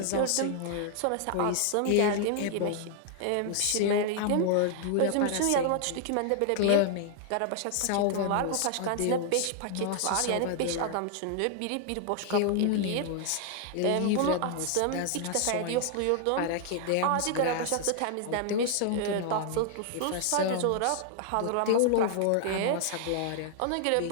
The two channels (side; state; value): both; different; correlation 0.00